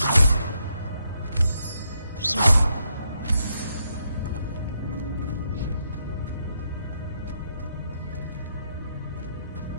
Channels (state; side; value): inverted; both; correlation -0.79